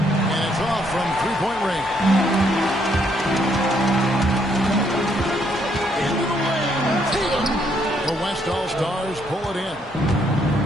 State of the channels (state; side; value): normal; both; correlation 0.71